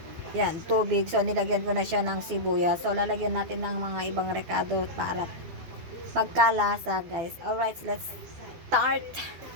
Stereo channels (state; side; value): late; left; 12 ms